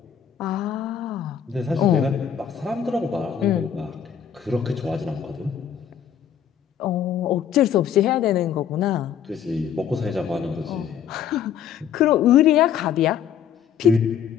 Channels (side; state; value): right; quieter; 8.6 dB